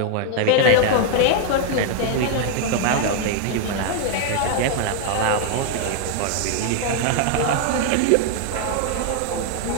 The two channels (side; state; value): both; different; correlation 0.00